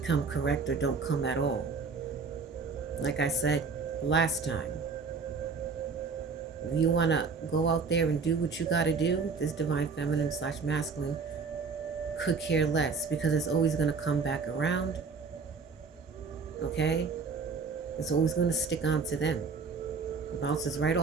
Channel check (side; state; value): left; quieter; 4.9 dB